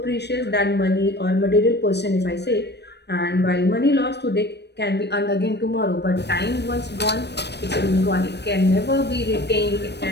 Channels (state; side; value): late; right; 0.49 ms